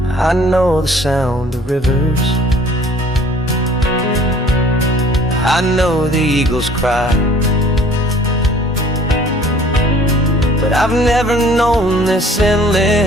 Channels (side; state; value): both; normal; correlation 0.53